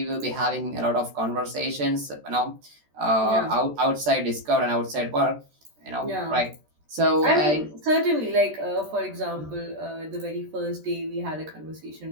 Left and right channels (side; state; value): left; late; 13 ms